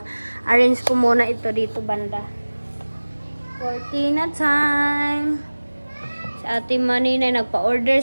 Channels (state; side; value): inverted; both; correlation -1.00